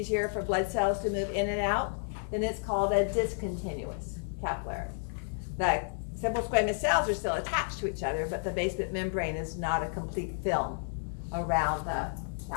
for blood cells to move in and out, then it's called a discontinuous capillary. The simple squamous cells are still attached to each other, but the basement membrane is not a complete film around the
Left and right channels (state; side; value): silent; right; digital silence